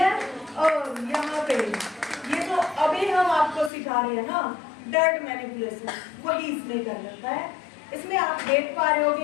और यहाँ पे ये तो अभी हम आपको सिखा रहे हैं ना डर्ट मैनिपुलेशन, वही इसमें कर रखा है। इसमें आप देख पा रहे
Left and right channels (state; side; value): drops out; right; at 3.7 s